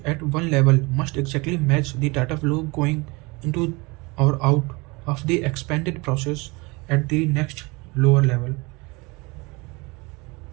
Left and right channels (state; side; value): quieter; left; 25.9 dB